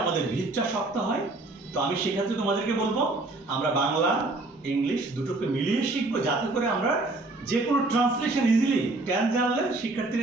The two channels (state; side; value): quieter; left; 3.0 dB